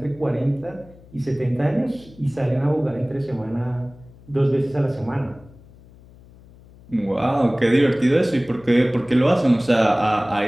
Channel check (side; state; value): left; noise; hum, 24 dB below the sound